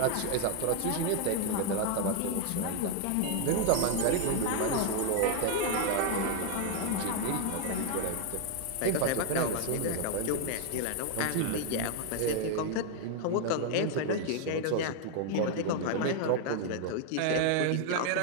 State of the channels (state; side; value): different; both; correlation 0.00